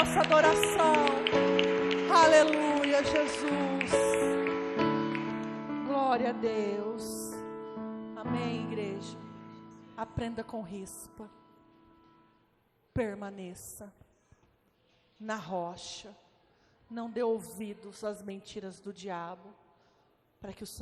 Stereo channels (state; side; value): identical; both; correlation 1.00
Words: adoração. Aleluia, Jesus. Glória a Deus. Amém, igreja. Aprenda com rispa. Permaneça na rocha. Não dê ouvidos às mentiras do diabo, para que o